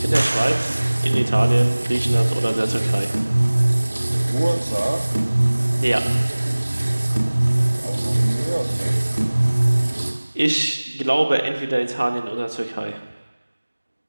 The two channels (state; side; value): inverted; both; correlation -1.00